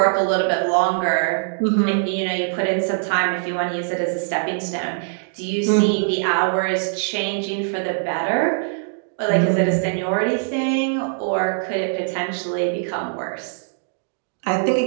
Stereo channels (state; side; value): silent; left; digital silence